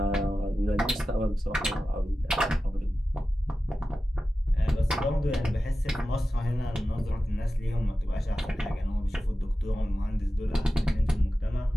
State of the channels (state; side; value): normal; both; correlation 0.94